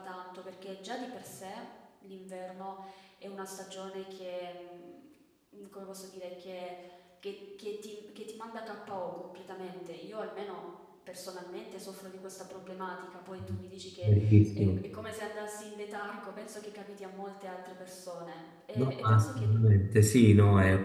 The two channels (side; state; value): both; identical; correlation 1.00